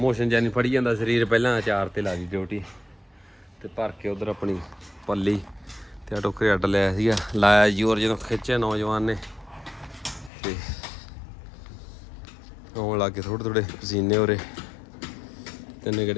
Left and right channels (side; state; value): right; drops out; at 10.3 s